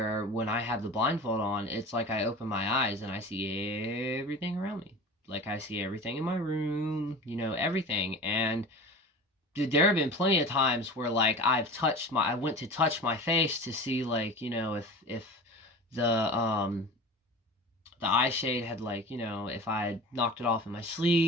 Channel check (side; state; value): both; normal; correlation 0.36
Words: when I have the blindfold on, it's like I open my eyes and I see everything around me. Like I see everything in my room, everything. And dude, there have been plenty of times where like I went to touch my face to see like, if the eye shade had like, if I had knocked it off in my